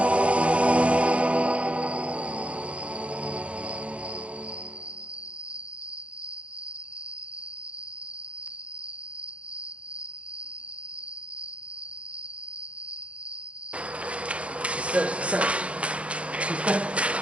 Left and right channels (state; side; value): late; left; 0.062 ms